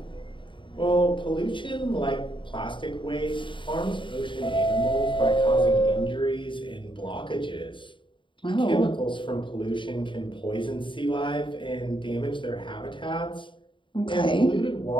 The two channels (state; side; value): late; right; 0.24 ms